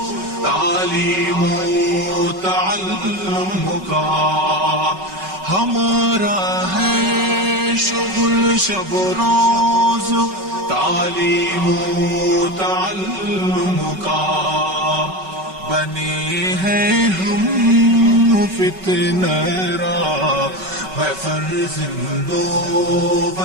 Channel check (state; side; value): late; left; 5.3 ms